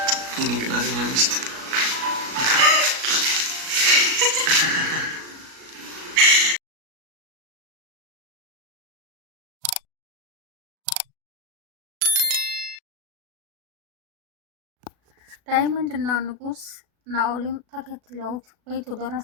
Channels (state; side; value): late; left; 37 ms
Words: የኔ ቀናተኛ ሚስት? ዳይመንድ እና ንጉስ ናኦልም ተከትለውት ቤቱ